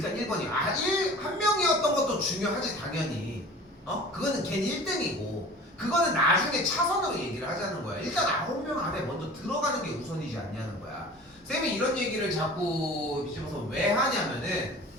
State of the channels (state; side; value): normal; both; correlation 0.42